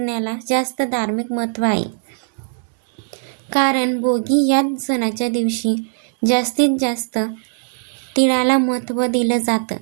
जास्त धार्मिक महत्त्व आहे. कारण भोगी या सणाच्या दिवशी जास्तीत जास्त तिळाला महत्त्व दिलं जातं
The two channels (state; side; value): silent; left; 66 dB below the other